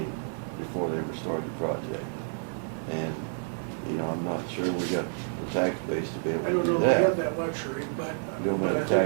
before they ever started the project. And, I'm not sure we got the tax base to be able I to don't do know if we have that. that luxury, but You don't have but I the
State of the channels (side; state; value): left; silent; 58 dB below the other